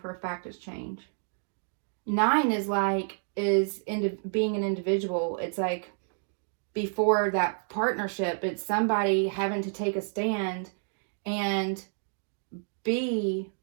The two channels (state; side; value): silent; left; digital silence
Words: a fact, is change. 9 is being an individual. It's like before that partnership, it's somebody having to take a stand and be